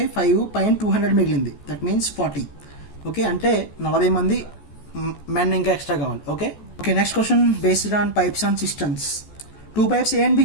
5 పైన 200 మిగిలింది, దట్ మీన్స్ 40. ఓకే, అంటే 40 మంది మెన్ ఇంకా ఎక్స్ట్రా కావాలి. Okay, next question based on pipes and systems. 2 pipes A and B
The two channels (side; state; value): right; late; 14 ms